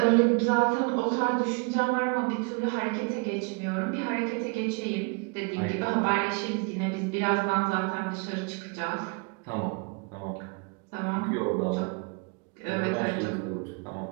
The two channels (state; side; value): quieter; left; 33.0 dB